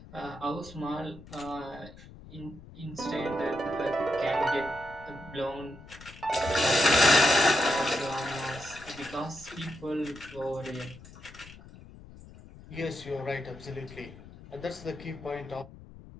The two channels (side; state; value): left; noise; rumble, 18 dB below the sound